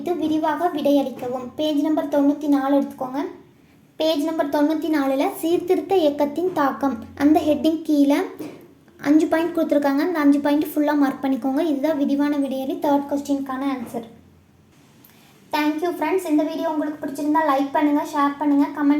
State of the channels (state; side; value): identical; both; correlation 1.00